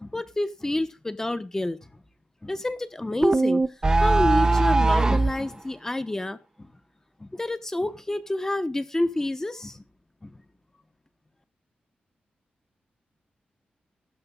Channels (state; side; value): normal; both; correlation 0.96